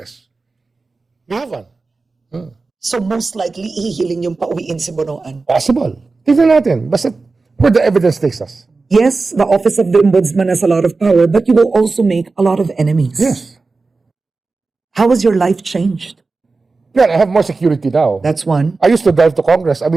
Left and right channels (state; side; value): quieter; left; 3.9 dB